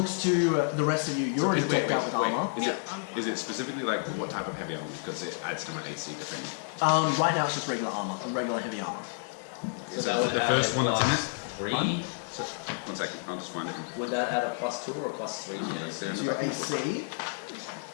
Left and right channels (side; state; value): right; silent; digital silence